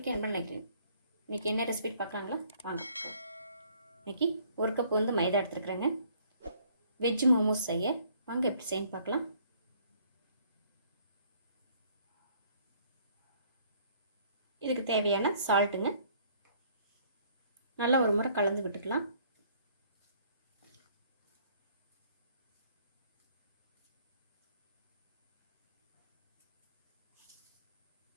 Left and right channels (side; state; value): both; inverted; correlation -0.61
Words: என்ன நினைக்கிறேன். இன்றைக்கி என்ன ரெசிபி பார்க்கலாங்களா? வாங்க. இன்றைக்கி ஒரு கப் வந்து மைதா எடுத்துருக்குறேங்க. வெஜ் மோமோஸ் செய்ய வாங்க எப்படி செய்யன்னு பார்க்கலாம். இதுக்கு தேவையான சால்ட்டுங்க. நல்லா ஒரு முறை கலந்து விட்டுக்கலாம்.